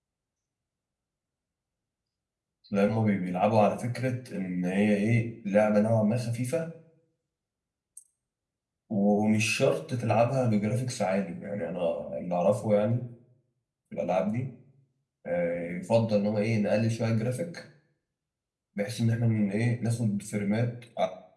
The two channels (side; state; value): both; identical; correlation 1.00